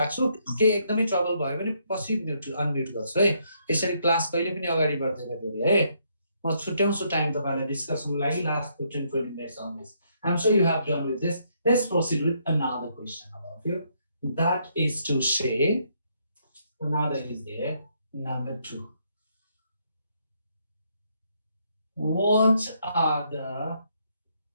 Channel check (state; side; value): inverted; both; correlation -0.73